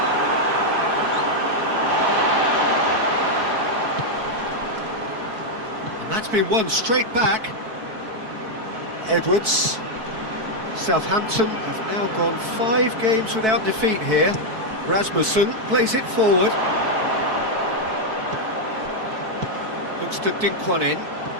And that's been won straight back. Edwards. Southampton have now gone 5 games without defeat here. Rasmussen plays it forward. Looks to dink one in.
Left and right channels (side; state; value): left; late; 4.6 ms